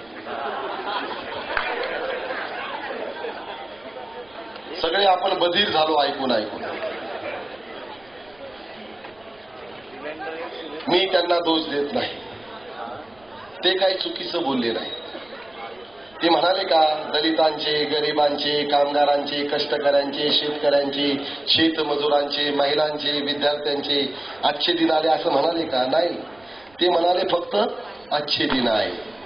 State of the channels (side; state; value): right; noise; rumble, 30 dB below the sound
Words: सगळे आपण बधीर झालो ऐकून ऐकून. मी त्यांना दोष देत नाही, ते काही चुकीचं बोलले नाही. ते म्हणाले का दलितांचे, गरिबांचे, कामगारांचे, कष्टकऱ्यांचे, शेतकऱ्यांचे, शेतमजुरांचे, महिलांचे, विद्यार्थ्यांचे अच्छे दिन आले असं म्हणाले का? नाही. ते म्हणाले फक्त अच्छे दिन आहे.